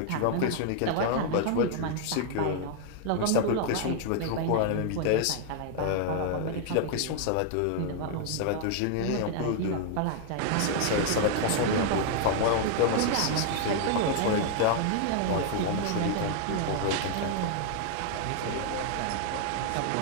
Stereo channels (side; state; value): both; different; correlation 0.00